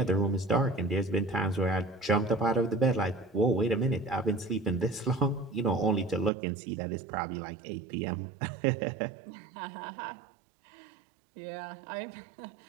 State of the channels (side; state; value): left; drops out; at 6.3 s